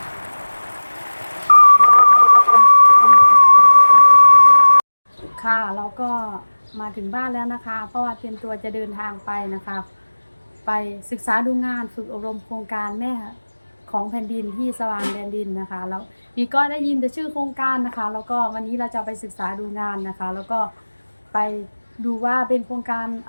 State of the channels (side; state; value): both; inverted; correlation -1.00